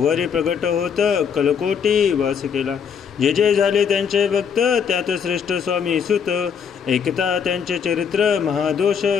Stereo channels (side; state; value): right; quieter; 7.1 dB